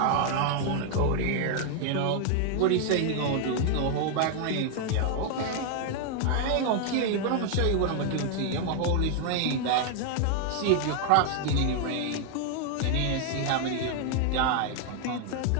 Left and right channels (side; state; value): both; different; correlation 0.00